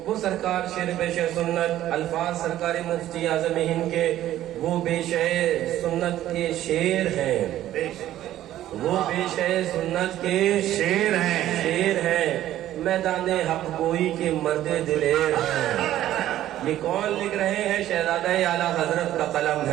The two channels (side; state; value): left; quieter; 13.1 dB